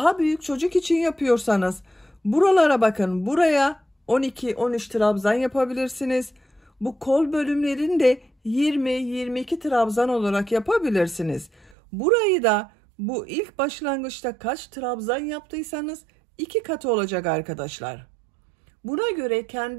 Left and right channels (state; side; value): drops out; left; at 11.8 s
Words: büyük çocuk için yapıyorsanız buralara bakın, buraya 12-13 trabzan yapabilirsiniz. Bu kol bölümlerini de 20-22 trabzan olarak yapabilirsiniz. Burayı da bu ilk başlangıçta kaç trabzan yaptıysanız 2 katı olacak arkadaşlar. Buna göre